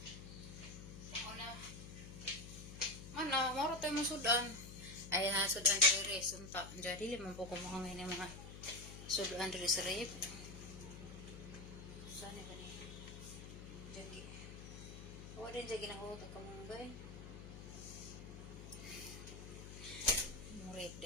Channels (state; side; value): noise; left; hum, 11 dB below the sound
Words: Mana, maro tayo masudan. Ay, sudan diri sunta. Jadi limang po kumangay ng mga sudan diri sa rip. Saan ba ni? Jagi. O din jagi nang hutot ka mong bay. Murid